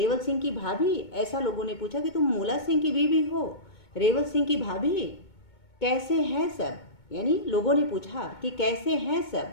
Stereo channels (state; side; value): late; right; 2.2 ms